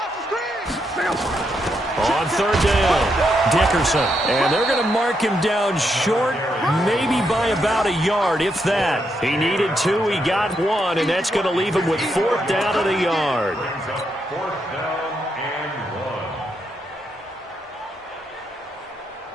the screen. Check out. On third down, Dickerson. And they're going to mark him down short, maybe by about a yard, if that. He needed 2, he got 1, and that's going to leave him with 4th down at a yard. 4th down and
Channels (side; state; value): both; normal; correlation 0.80